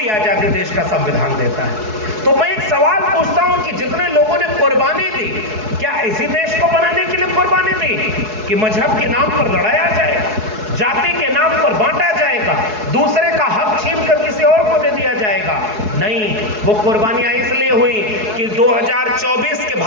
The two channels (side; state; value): left; late; 4.7 ms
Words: आजादी देश का संविधान देता है। तो मैं एक सवाल पूछता हूं कि जितने लोगों ने कुर्बानी दी, क्या इसी देश को बनाने के लिए कुर्बानी दी कि मजहब के नाम पर लड़ाया जाएगा, जाति के नाम पर बांटा जाएगा, दूसरे का हक छीन कर किसी और को दे दिया जाएगा? नहीं, वो कुर्बानियां इसलिए हुई कि 2024 के